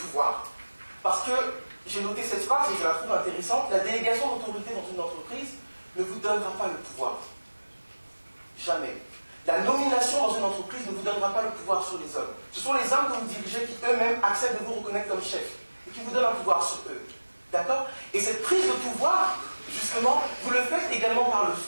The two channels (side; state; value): both; inverted; correlation -1.00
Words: Parce que, j'ai noté cette phrase et je la trouve intéressante, la délégation d'autorité dans une entreprise ne vous donnera pas le pouvoir. Jamais. La nomination dans une entreprise ne vous donnera pas le pouvoir sur les hommes. Ce sont les hommes que vous dirigez qui eux-mêmes acceptent de vous reconnaître comme chef et qui vous donnent un pouvoir sur eux. D'accord? Et cette prise de pouvoir, justement, vous le faites également